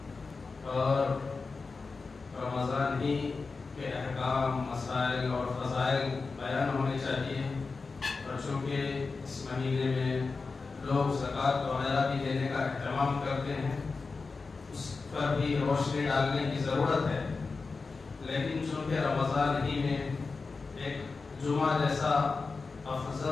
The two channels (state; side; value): quieter; right; 4.3 dB